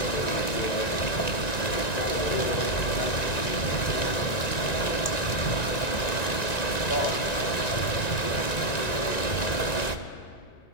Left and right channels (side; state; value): right; late; 1.9 ms